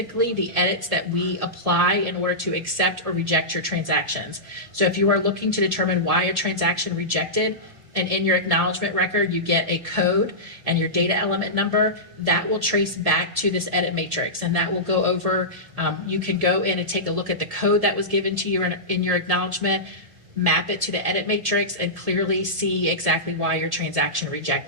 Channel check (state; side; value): late; left; 1.7 ms